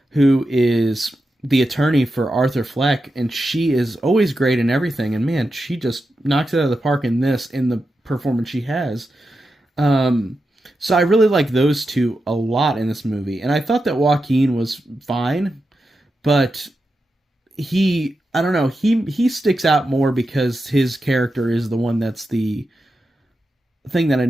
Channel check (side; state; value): both; normal; correlation 0.89